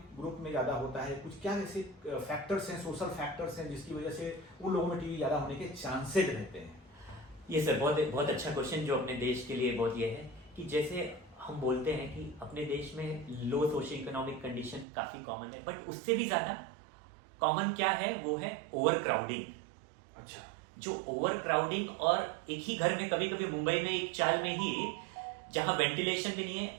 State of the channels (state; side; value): drops out; left; at 14.9 s